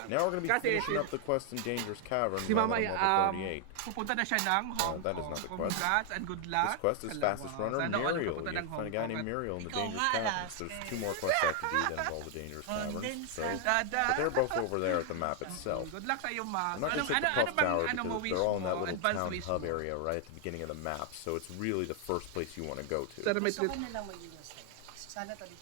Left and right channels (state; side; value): different; both; correlation 0.00